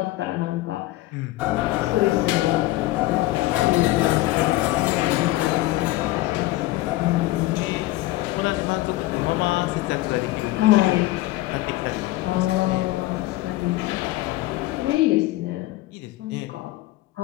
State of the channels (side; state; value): right; quieter; 17.6 dB